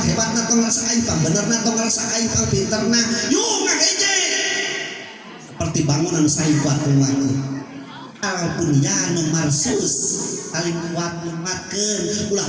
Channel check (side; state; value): both; identical; correlation 1.00